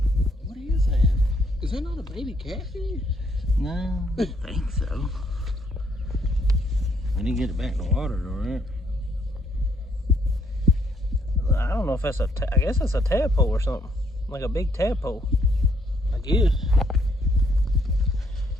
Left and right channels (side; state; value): both; normal; correlation 0.68